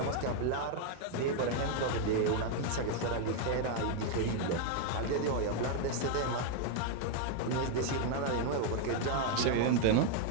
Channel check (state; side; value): different; both; correlation 0.01